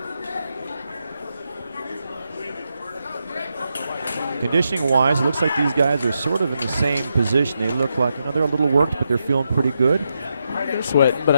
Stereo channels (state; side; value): inverted; both; correlation -0.84